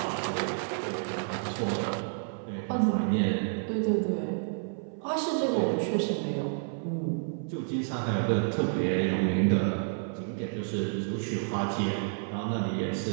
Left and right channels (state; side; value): silent; left; 55 dB below the other